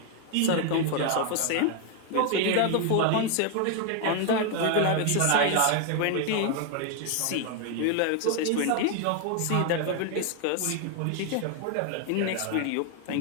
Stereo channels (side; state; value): both; different; correlation 0.01